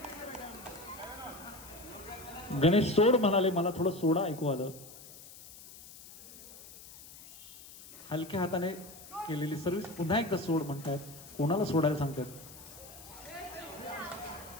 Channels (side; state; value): left; noise; hiss, 17 dB below the sound